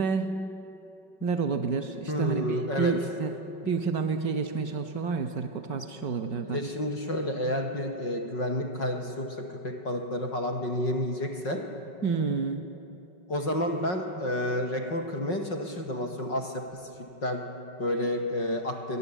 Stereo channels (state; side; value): late; right; 5.5 ms